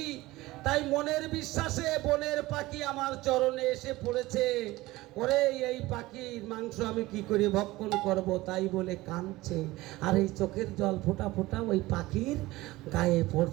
তাই মনের বিশ্বাসে বনের পাখি আমার চরণে এসে পড়েছে। ওরে এই পাখির মাংস আমি কি করে ভক্ষণ করব, তাই বলে কাঁদছে। আর এই চোখের জল ফোঁটা ফোঁটা ওই পাখির গায়ে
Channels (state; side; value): quieter; left; 19.0 dB